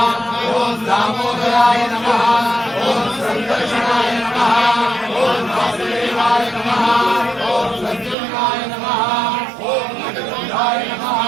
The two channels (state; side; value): drops out; left; at 8.2 s